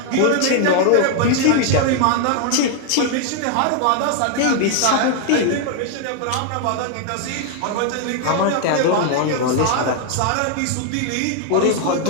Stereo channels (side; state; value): both; different; correlation 0.00